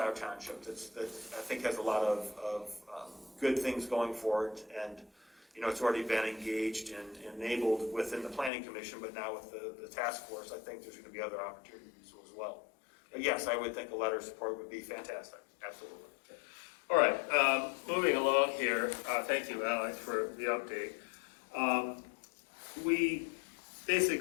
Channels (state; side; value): drops out; right; at 8.5 s